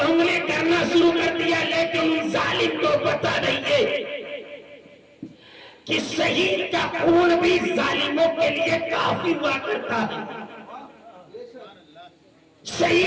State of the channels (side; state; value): both; identical; correlation 1.00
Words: انگلی کرنا شروع کر دیا، لیکن ان ظالم کو پتہ نہیں ہے کہ شہید کا خون بھی ظالموں کے لیے کافی ہوا کرتا ہے،